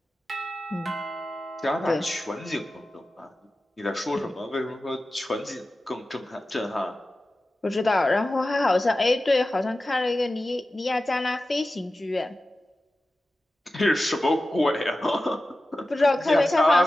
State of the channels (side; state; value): both; normal; correlation 0.94